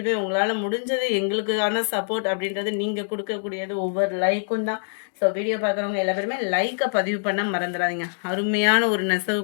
உங்களால் முடிஞ்சது எங்களுக்கான சப்போர்ட் அப்படின்றது நீங்கள் கொடுக்கக்கூடியது ஒவ்வொரு லைக்கும் தான். ஸோ வீடியோ பார்க்குறவங்க எல்லா பேருமே லைக்கை பதிவு பண்ண மறந்துடாதீங்க. அருமையான ஒரு நெசவு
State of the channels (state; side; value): silent; right; digital silence